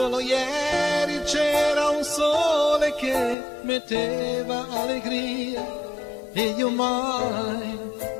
ieri c'era un sole che metteva allegria e io mai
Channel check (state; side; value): drops out; right; at 3.4 s